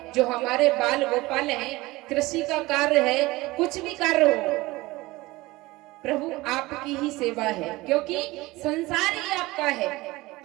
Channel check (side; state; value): left; quieter; 20.2 dB